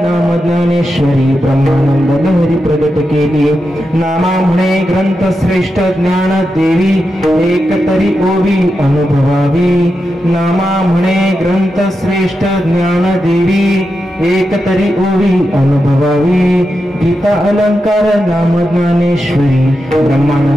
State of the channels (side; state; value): both; normal; correlation 0.88